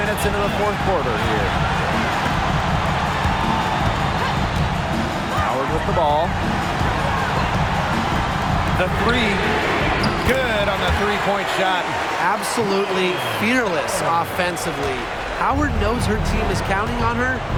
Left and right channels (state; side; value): identical; both; correlation 1.00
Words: into the fourth quarter here. Howard with the ball. The three. Good on the three-point shot. Absolutely fearless offensively. Howard knows her team is counting on her,